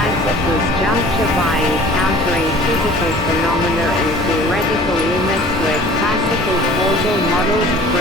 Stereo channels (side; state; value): both; normal; correlation 0.47